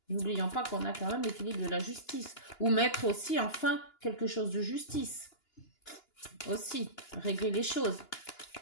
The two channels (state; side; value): late; right; 2.9 ms